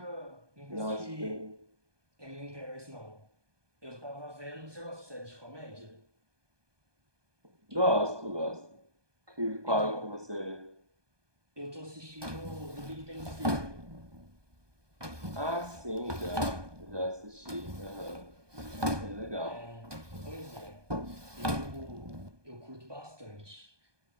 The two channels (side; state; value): left; late; 1.2 ms